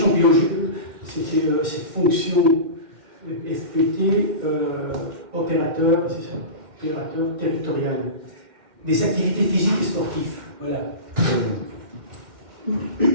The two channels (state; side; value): late; left; 2.1 ms